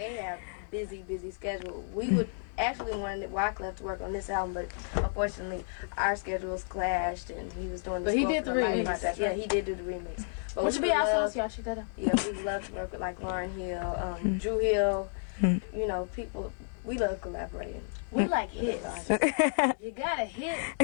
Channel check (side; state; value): right; silent; digital silence